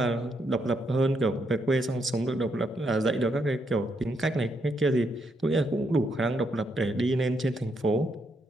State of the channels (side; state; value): both; normal; correlation 0.78